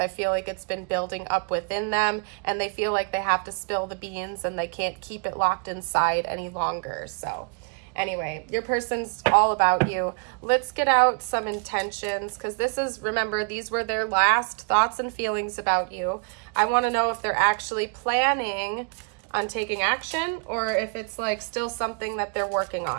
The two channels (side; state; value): left; quieter; 37.6 dB